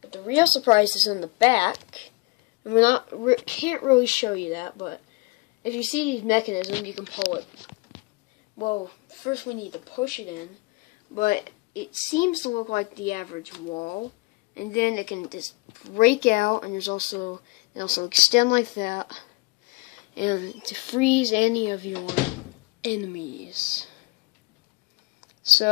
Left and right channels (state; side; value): quieter; right; 25.8 dB